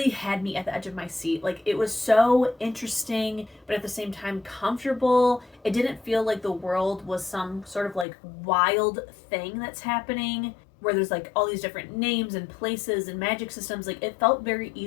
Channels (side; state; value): right; drops out; at 8.1 s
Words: had me at the edge of my seat. Like, it was so interesting, but at the same time comfortable. It didn't feel like the world was some sort of like wild thing that's happening where there's like all these different names and places and magic systems. Like, it felt very